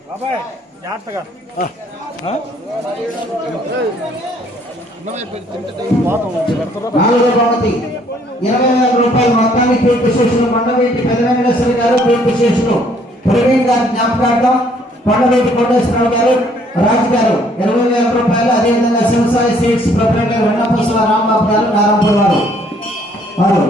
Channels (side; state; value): both; normal; correlation 0.63